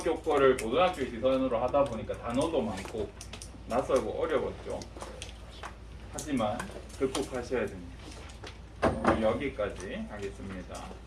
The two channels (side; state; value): both; identical; correlation 1.00